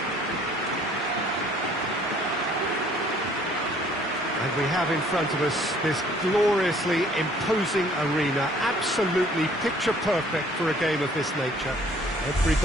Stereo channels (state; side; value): normal; both; correlation 0.58